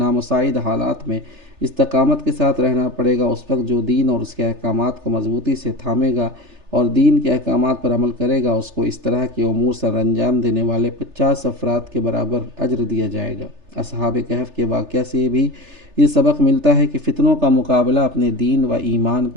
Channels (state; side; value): late; left; 3.3 ms